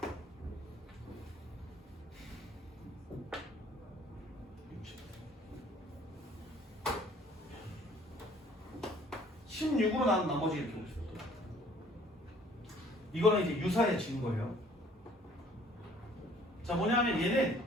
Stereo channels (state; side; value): normal; both; correlation 0.57